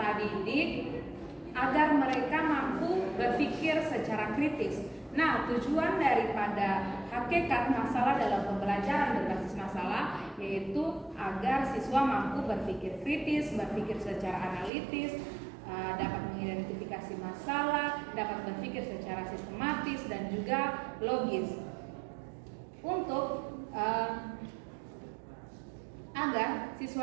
didik agar mereka mampu berpikir secara kritis. Nah, tujuan daripada hakikat masalah dalam pembelajaran berbasis masalah yaitu agar siswa mampu berpikir kritis, berpikir secara analitis, dapat mengidentifikasi masalah, dapat berpikir secara sistematis dan juga logis. Untuk agar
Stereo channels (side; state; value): left; drops out; at 14.7 s